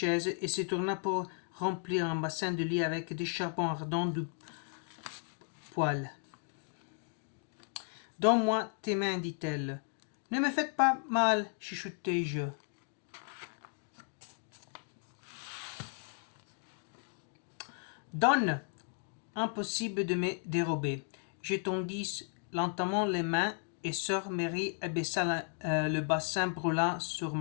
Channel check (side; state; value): right; silent; 54 dB below the other